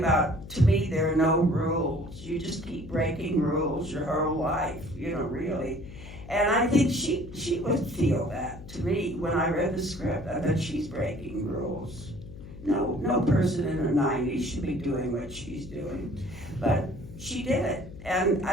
to me, there are no rules. You just keep breaking rules your whole life, you know, really. And I think she would feel that to me when I read the script. I thought she's breaking rules. No person in her 90s should be doing what she's doing. But she did it. And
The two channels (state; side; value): noise; left; hum, 14 dB below the sound